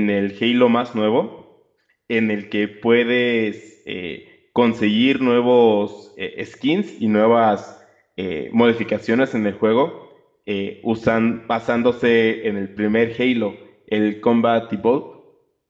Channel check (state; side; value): identical; both; correlation 1.00